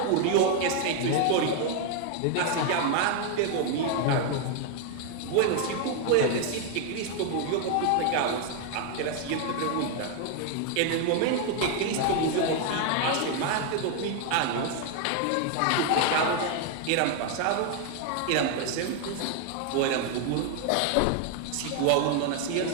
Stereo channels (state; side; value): different; both; correlation 0.01